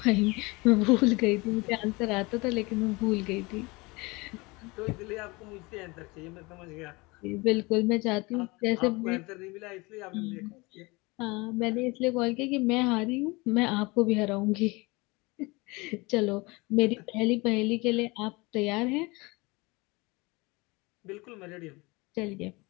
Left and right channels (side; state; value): right; quieter; 24.8 dB